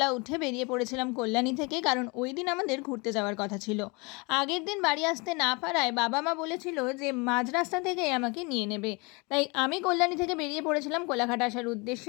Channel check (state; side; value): quieter; right; 28.4 dB